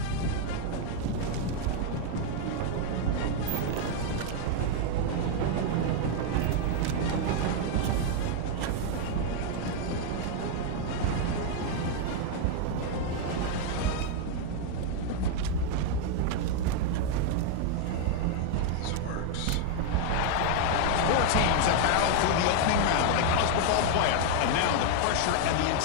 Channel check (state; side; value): different; both; correlation 0.00